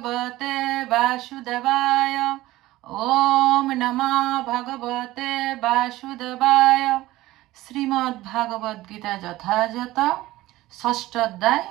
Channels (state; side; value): quieter; left; 17.1 dB